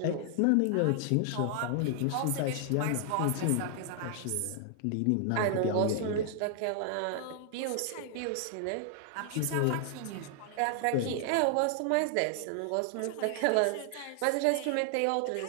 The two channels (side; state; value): both; different; correlation 0.00